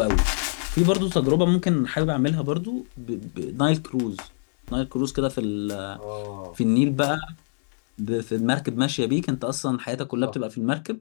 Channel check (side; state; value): right; silent; digital silence